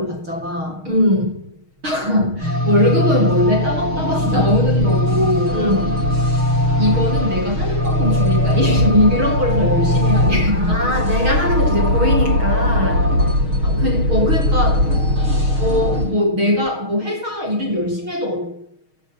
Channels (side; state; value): left; late; 6.4 ms